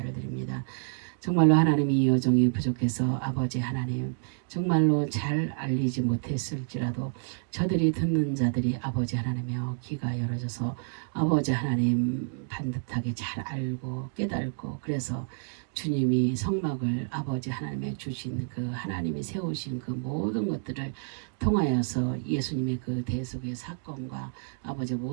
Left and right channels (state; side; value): silent; left; digital silence